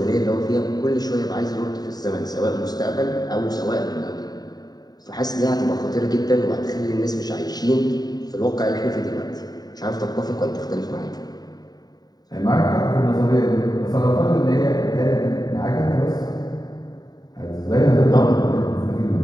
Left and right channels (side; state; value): right; late; 0.19 ms